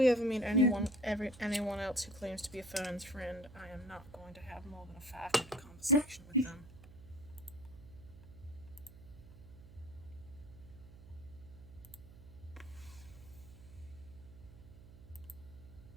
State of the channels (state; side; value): noise; right; hum, 18 dB below the sound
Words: ever meet anyone else who claims to be a Fern's friend, I am not going to have more than a 5-minute conversation with them.